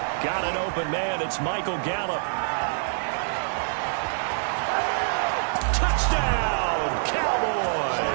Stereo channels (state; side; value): silent; left; 61 dB below the other